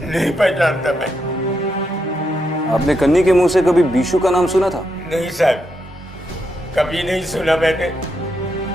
नहीं पहचानता मैं। आपने कन्नी के मुंह से कभी बीशू का नाम सुना था? नहीं सर, कभी नहीं सुना मैंने।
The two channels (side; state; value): both; normal; correlation 0.82